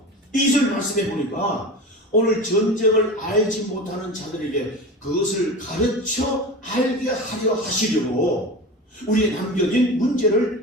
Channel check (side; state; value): both; normal; correlation 0.30